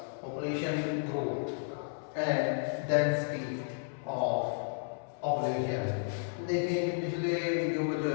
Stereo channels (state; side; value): silent; right; 56 dB below the other